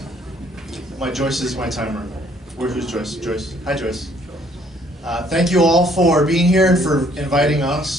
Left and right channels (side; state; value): both; normal; correlation 0.63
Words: Joyce is my timer. Who's Joyce? Joyce. Hi, Joyce. Thank you all for being here and for inviting